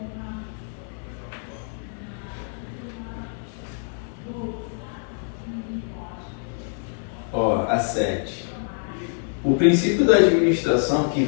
Ó, a 7. O princípio da administração que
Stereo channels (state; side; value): silent; right; 62 dB below the other